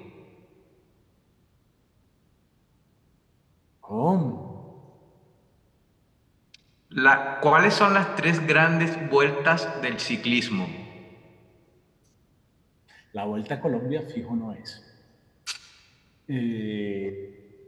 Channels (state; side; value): identical; both; correlation 1.00